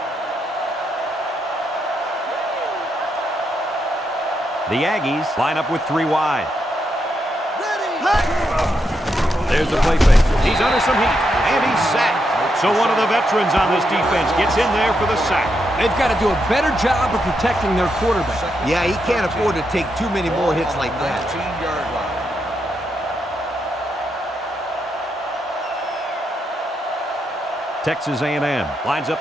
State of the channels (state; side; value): normal; both; correlation 0.82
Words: The Aggies line up with 3 wide. There's the play fake. He's under some heat, and he's sacked. So one of the veterans on this defense gets in there for the sack. They've got to do a better job of protecting their quarterback. Yeah, he can't afford to take too many more hits like that. 19-yard line. Texas A&M lines